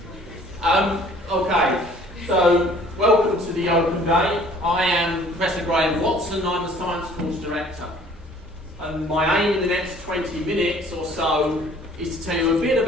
Okay, so welcome to the Open Day. I am Professor Graham Watson. I'm the Science Course Director. And my aim in the next 20 minutes or so is to tell you a bit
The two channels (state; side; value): normal; both; correlation 0.54